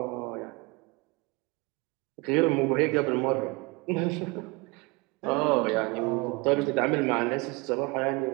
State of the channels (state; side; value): quieter; left; 26.7 dB